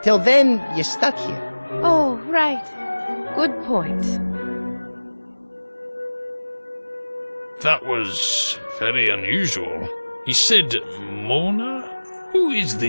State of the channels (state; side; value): inverted; both; correlation -1.00